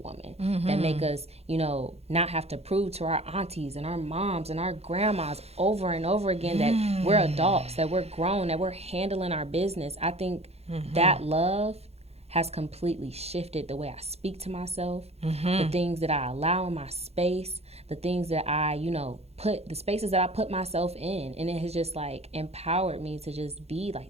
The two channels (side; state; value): left; late; 0.30 ms